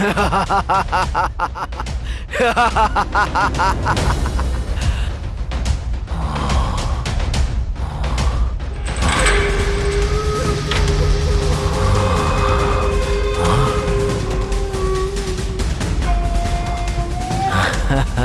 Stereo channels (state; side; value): identical; both; correlation 1.00